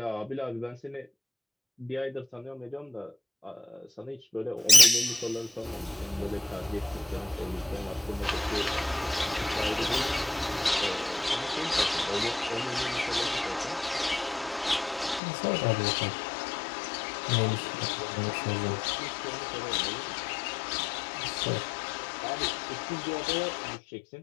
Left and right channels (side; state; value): right; drops out; at 15.2 s